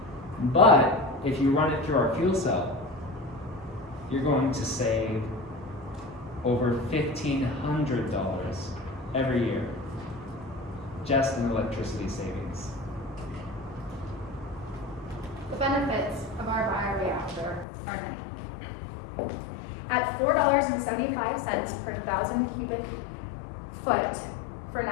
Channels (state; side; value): drops out; right; at 17.7 s